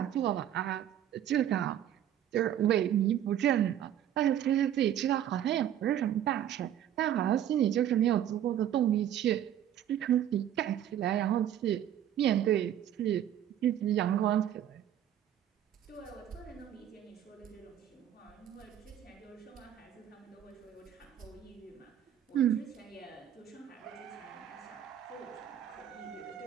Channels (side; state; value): left; quieter; 10.8 dB